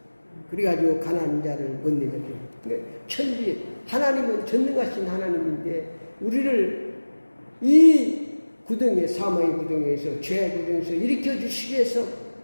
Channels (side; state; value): both; inverted; correlation -1.00